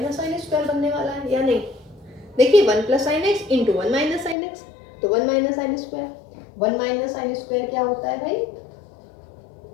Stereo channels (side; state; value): right; drops out; at 4.4 s